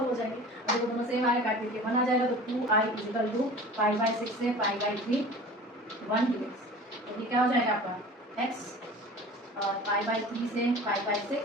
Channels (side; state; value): both; normal; correlation 0.40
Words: हो जाएंगी। अगर वो दोनों सेम आए काट के 1 आ जाएगा, तो 2i is equal to pi by 6 से पाई बाई 3 1 dx। तो ये क्या हो जाएगा आपका x और पाई बाई 3 से पाई बाई